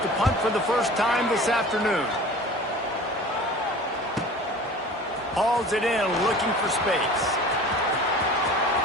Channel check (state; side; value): normal; both; correlation 0.41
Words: to punt for the first time this afternoon. Hauls it in, looking for space.